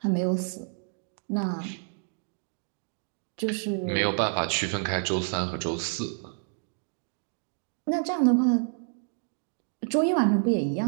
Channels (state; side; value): silent; left; 59 dB below the other